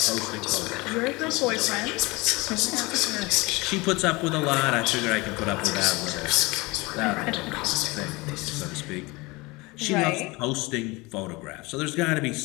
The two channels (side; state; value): right; quieter; 24.0 dB